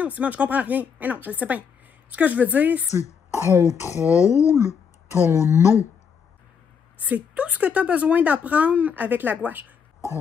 Simone, je comprends rien. Mais non, je le sais bien. Ce que je veux dire, c'est contrôle ton eau. C'est tout ce que tu as besoin d'apprendre avec la gouache.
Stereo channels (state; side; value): quieter; right; 6.7 dB